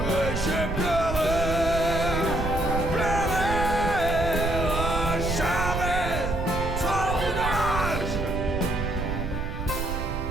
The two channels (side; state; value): right; noise; rumble, 4 dB below the sound